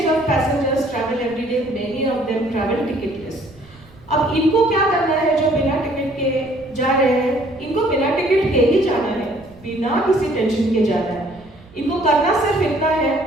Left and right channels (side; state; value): right; noise; rumble, 25 dB below the sound